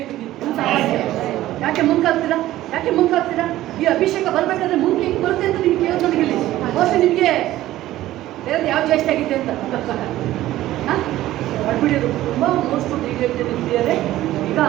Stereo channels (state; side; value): quieter; left; 15.0 dB